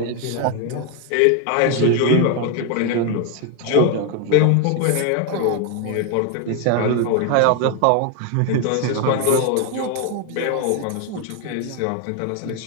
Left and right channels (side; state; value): both; different; correlation 0.01